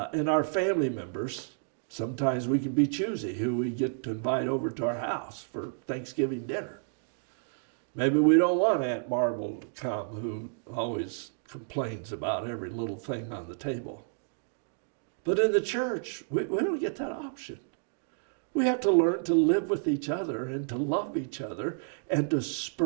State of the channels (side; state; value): left; silent; digital silence